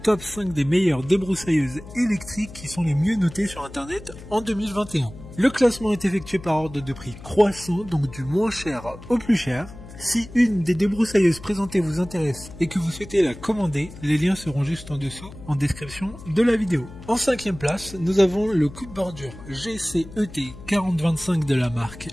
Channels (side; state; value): left; noise; hum, 16 dB below the sound